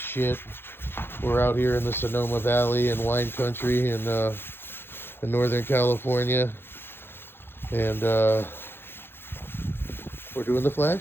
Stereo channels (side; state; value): right; late; 0.11 ms